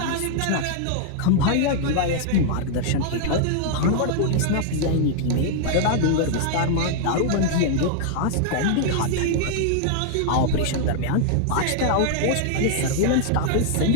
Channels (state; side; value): different; both; correlation 0.00